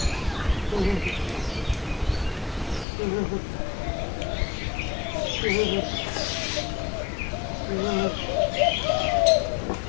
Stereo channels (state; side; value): drops out; right; at 2.9 s